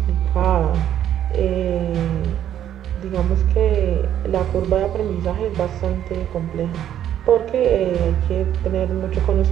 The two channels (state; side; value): quieter; left; 10.7 dB